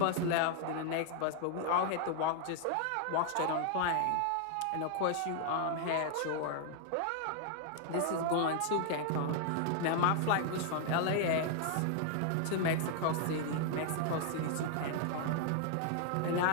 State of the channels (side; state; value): both; different; correlation 0.00